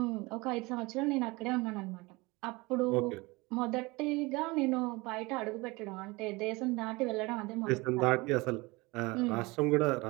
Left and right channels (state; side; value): quieter; left; 23.8 dB